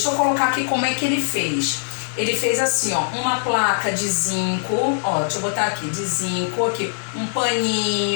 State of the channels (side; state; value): right; silent; digital silence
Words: eu colocar aqui como é que ele fez. Ele fez assim, ó, uma placa de zinco, ó, deixa eu botar aqui, de zinco, aqui, um